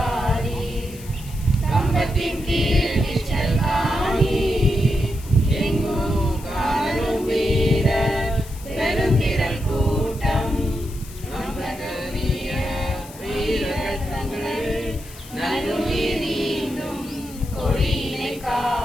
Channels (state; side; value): noise; left; hiss, 18 dB below the sound